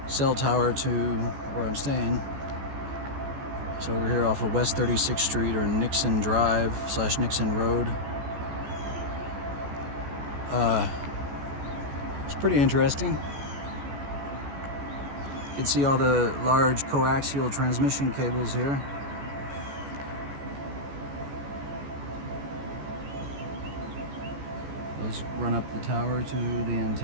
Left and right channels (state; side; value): late; left; 14 ms